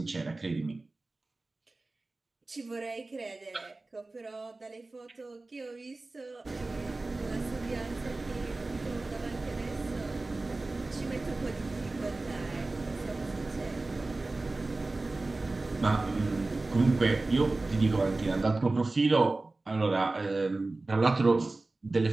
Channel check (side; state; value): left; quieter; 3.2 dB